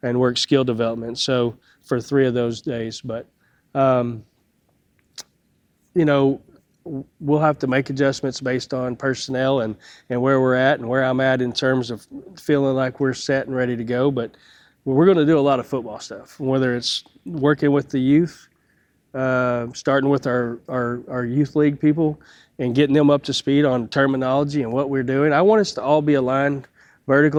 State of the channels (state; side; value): identical; both; correlation 1.00